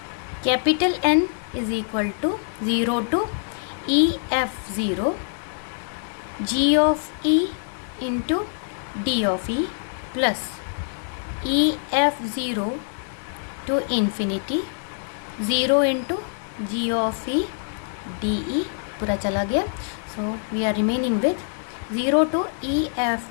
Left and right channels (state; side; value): silent; right; digital silence